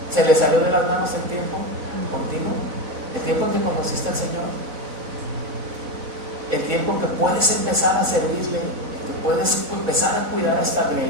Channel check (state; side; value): late; left; 4.0 ms